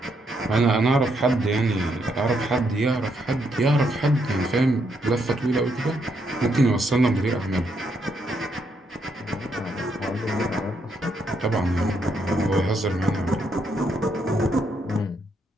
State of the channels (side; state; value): both; normal; correlation 0.76